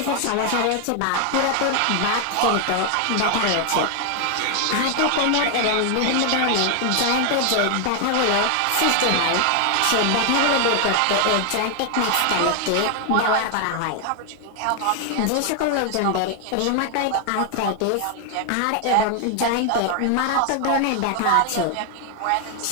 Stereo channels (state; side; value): different; both; correlation 0.00